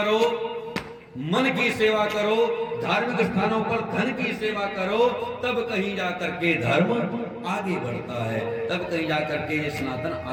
मन की सेवा करो, धार्मिक स्थानों पर धन की सेवा करो, तब कहीं जाकर के धर्म आगे बढ़ता है, तब कहीं जाकर के ये सनातन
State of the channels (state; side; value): identical; both; correlation 1.00